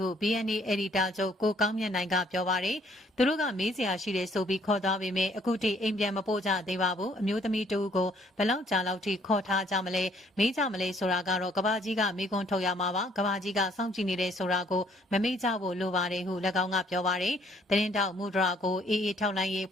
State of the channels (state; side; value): normal; both; correlation 0.63